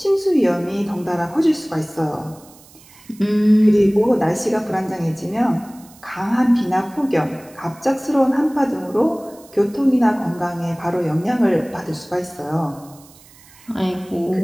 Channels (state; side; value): noise; right; hiss, 25 dB below the sound